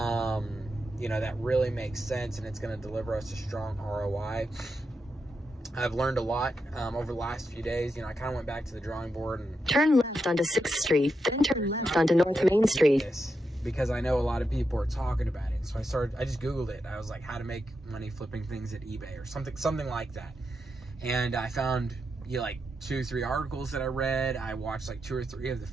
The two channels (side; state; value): both; normal; correlation 0.86